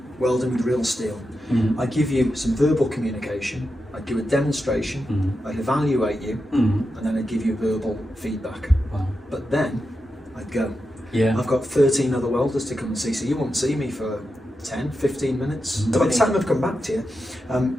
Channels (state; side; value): normal; both; correlation 0.89